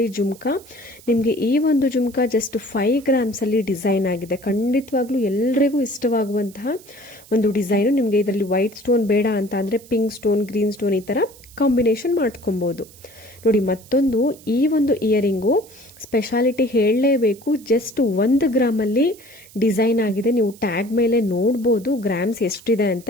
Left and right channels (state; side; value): noise; right; hiss, 23 dB below the sound